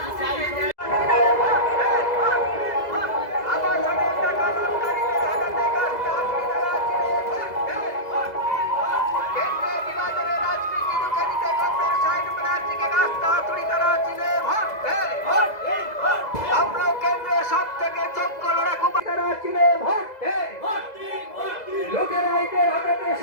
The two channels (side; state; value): right; late; 2.0 ms